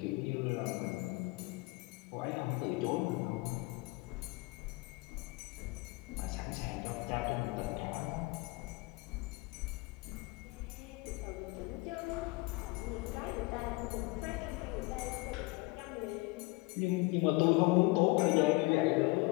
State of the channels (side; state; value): right; quieter; 24.2 dB